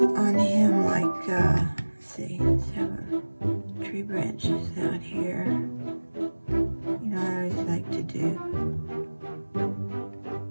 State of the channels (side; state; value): both; inverted; correlation -1.00